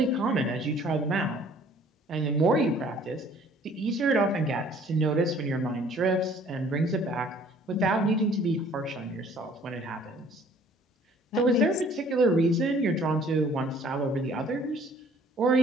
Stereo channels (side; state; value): both; normal; correlation 0.55